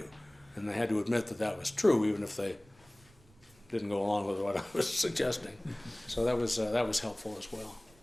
And they had to admit that that was true, even if they didn't go along with what I was suggesting. So that was helpful as well.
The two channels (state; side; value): noise; right; rumble, 28 dB below the sound